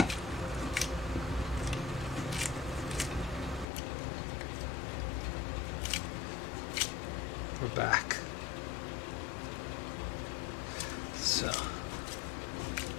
We're back. So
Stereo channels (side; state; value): right; drops out; at 3.7 s